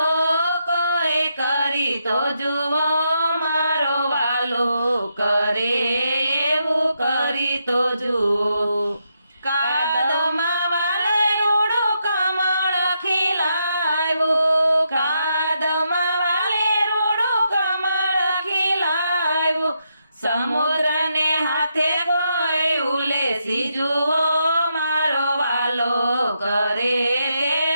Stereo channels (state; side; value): inverted; both; correlation -0.81